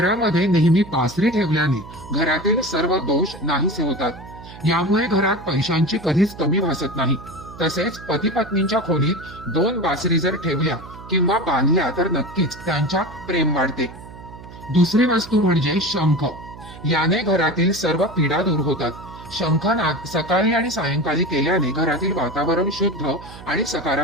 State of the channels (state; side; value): noise; right; hum, 16 dB below the sound